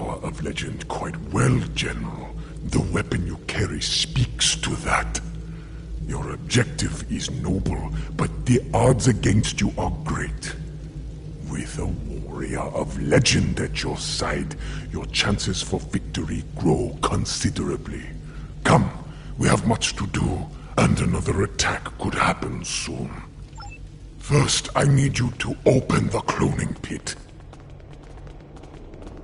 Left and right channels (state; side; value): identical; both; correlation 1.00